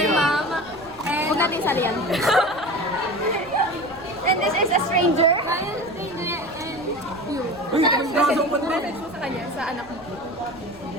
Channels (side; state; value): right; noise; rumble, 23 dB below the sound